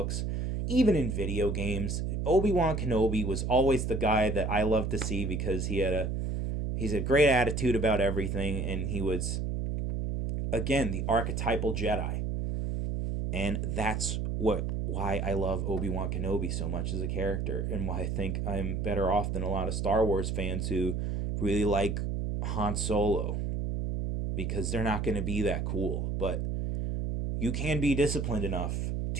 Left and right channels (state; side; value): noise; right; hum, 1 dB below the sound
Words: even in video games. Obi-Wan Kenobi was always the guy that I loved to see because he's a great attitude about everything, and he was, again, the archetypal Jedi. And that's why I love Obi-Wan Kenobi so much as a character, and why I think I'm better off than a lot of Star Wars fans who really like Han Solo, because they're not going to be that cool. But you can be disciplined enough